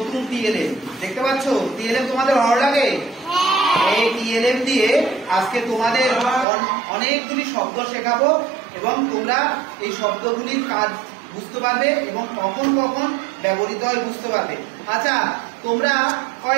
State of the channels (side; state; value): left; drops out; at 6.5 s